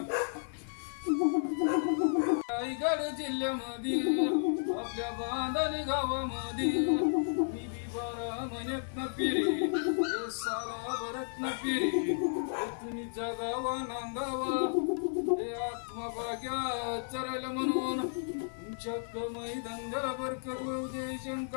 रायगड जिल्ह्यामध्ये आपल्या बांधणी गावामध्ये मी बी 12 महिन्यात न पिरी साला भरत न पिरी तुम्ही जगावा नांदावा हे आत्मभाग्या चरायला म्हणून तुमच्या कमाई धंद्याला बरकत होऊ दे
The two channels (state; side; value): silent; right; 56 dB below the other